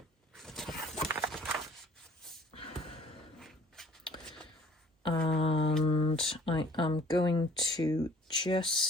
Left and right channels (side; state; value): both; normal; correlation 0.55